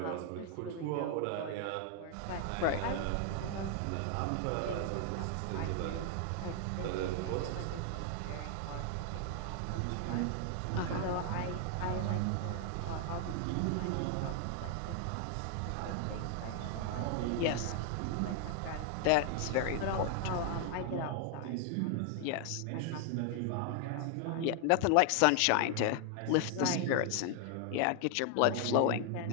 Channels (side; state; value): both; different; correlation 0.00